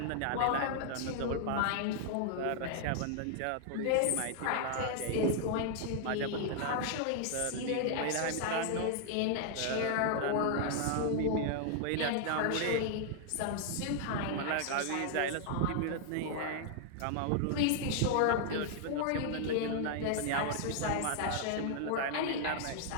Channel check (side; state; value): both; different; correlation 0.00